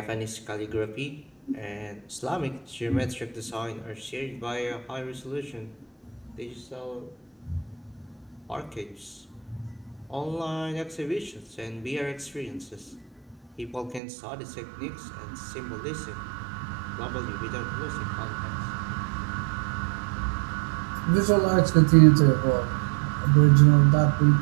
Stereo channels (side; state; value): left; drops out; at 14.0 s